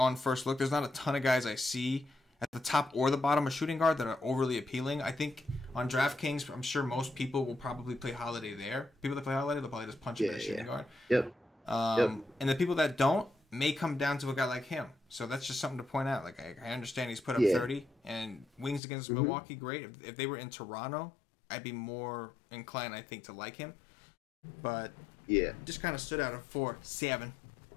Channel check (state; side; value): drops out; right; at 18.8 s